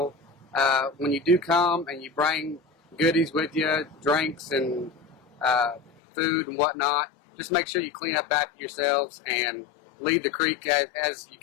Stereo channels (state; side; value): drops out; right; at 5.9 s